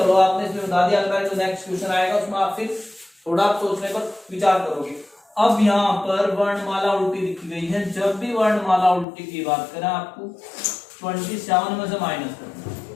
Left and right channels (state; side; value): drops out; right; at 9.1 s